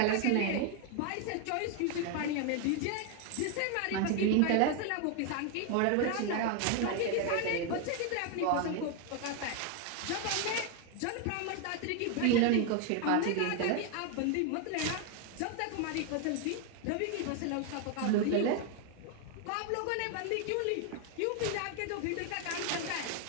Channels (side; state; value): both; different; correlation 0.01